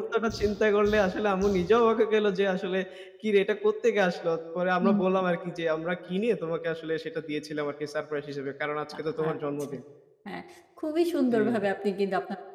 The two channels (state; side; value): identical; both; correlation 1.00